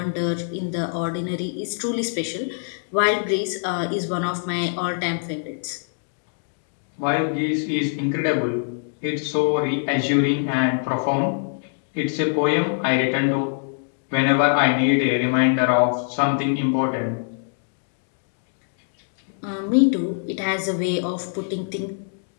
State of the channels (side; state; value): right; silent; digital silence